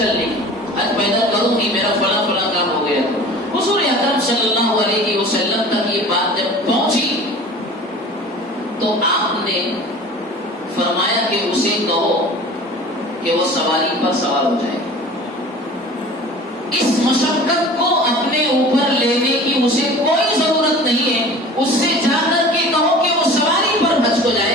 کی، آج پیدل کروں گی میرا فلاں فلاں کام ہو گیا۔ حضور اکرم صلی اللہ علیہ وسلم تک یہ بات جب پہنچی تو آپ نے فرمایا کہ اسے کہو کہ وہ سواری پر سوار ہو جائے، اس مشقت کو اپنے اوپر لینے کی اسے کوئی ضرورت نہیں ہے، اس سے جا کر کے کہو کہ وہ سواری پر حج کو جائے،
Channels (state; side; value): normal; both; correlation 0.41